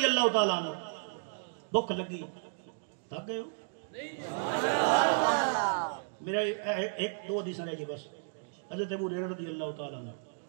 اللہ تعالیٰ عنہ بھوک لگی تھک گئے ہو میرا ایک دو حدیث رہ گئی بس حضرت ابو ہریرہ رضی اللہ تعالیٰ عنہ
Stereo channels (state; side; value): silent; left; digital silence